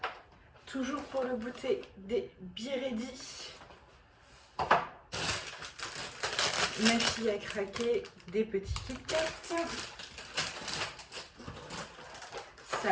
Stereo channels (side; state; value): both; identical; correlation 1.00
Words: Toujours pour le goûter, des Biredi. Ma fille a craqué des petits Kit Kat.